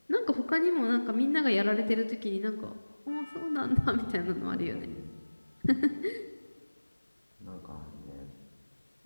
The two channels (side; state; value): both; inverted; correlation -1.00